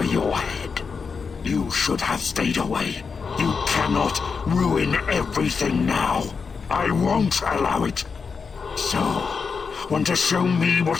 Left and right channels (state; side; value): quieter; right; 5.4 dB